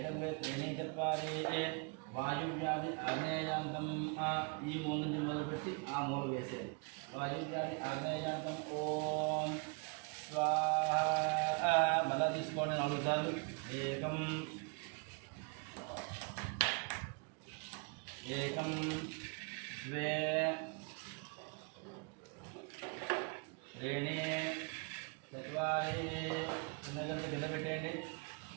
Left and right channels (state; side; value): quieter; left; 34.1 dB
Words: ద్వే త్రీణి చత్వారి వాయువ్యాధి ఆగ్నేయాంతం ఈ మూల నుంచి మొదలుపెట్టి ఆ మూల వేసేది వాయువ్యాధి ఆగ్నేయాంతం ఓం స్వాహ మళ్ళా తీసుకోండి 4 సార్లు ఏకం ఏకం ద్వే త్రీణి చత్వారి చిన్నగంట కింద పెట్టేయండి